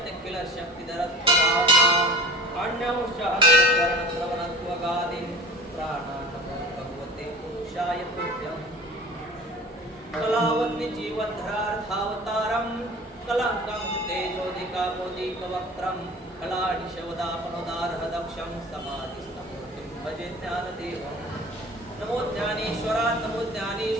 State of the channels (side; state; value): both; normal; correlation 0.39